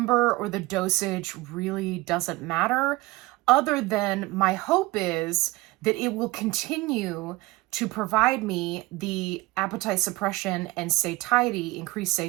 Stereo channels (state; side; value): quieter; left; 21.1 dB